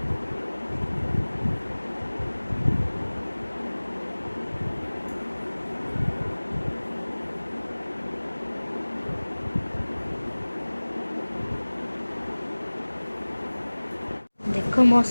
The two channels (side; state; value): both; inverted; correlation -1.00